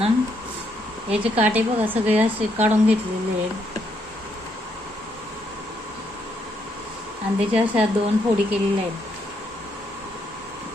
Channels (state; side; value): normal; both; correlation 0.75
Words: याचे काटे बघा सगळे असे काढून घेतलेले आहेत. आणि त्याच्या अशा 2 फोडी केलेल्या आहेत.